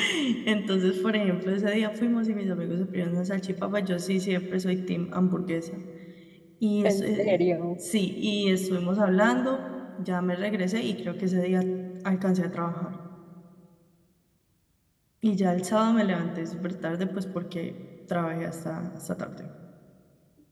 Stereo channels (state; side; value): identical; both; correlation 1.00